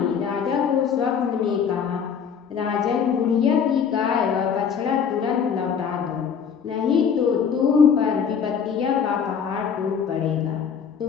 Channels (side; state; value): right; quieter; 7.0 dB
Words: राजा को स्वप्न में कहा, राजन, बुढ़िया की गाय व बछड़ा तुरंत लौटा दो, नहीं तो तुम पर विपत्तियों का पहाड़ टूट पड़ेगा,